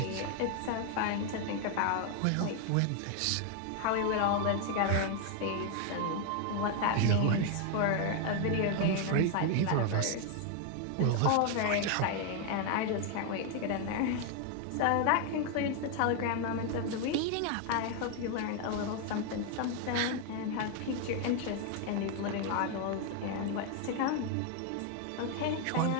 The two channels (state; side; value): different; both; correlation 0.01